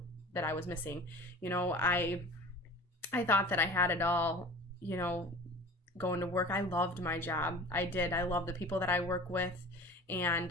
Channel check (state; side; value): normal; both; correlation 0.40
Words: that I was missing. You know, I thought that I had it all, you know, going to work. I loved my job. I did. I love the people that I work with.